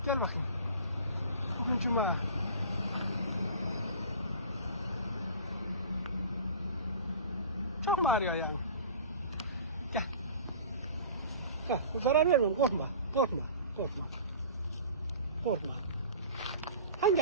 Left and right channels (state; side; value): inverted; both; correlation -0.40